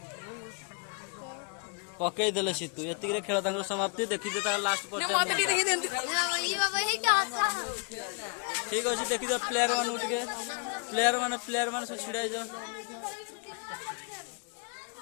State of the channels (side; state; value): right; quieter; 35.0 dB